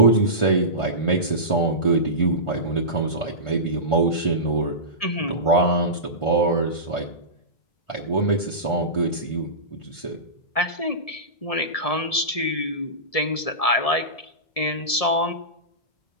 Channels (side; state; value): right; late; 1.7 ms